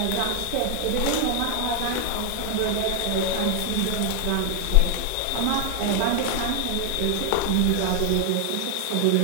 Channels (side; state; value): both; different; correlation 0.00